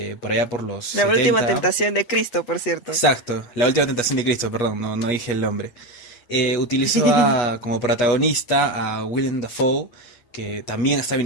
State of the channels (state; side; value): late; right; 8.3 ms